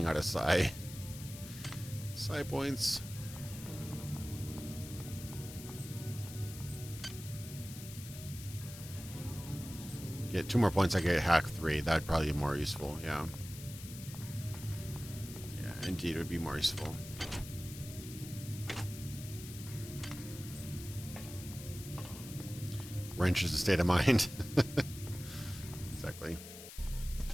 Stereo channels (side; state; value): left; noise; hiss, 13 dB below the sound